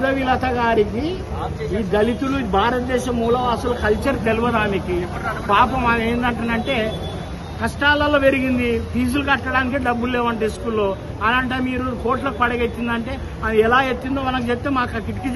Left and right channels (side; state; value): both; identical; correlation 1.00